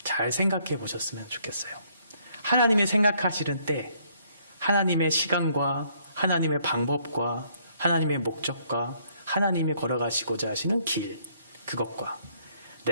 잘 생각해 보셨으면 좋겠어요. 하나님이 생각하시는 때 하나님의 시간과 하나님의 방법과 하나님의 목적과 하나님이 걸어가시고자 하시는 길 그것과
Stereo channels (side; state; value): both; inverted; correlation -0.67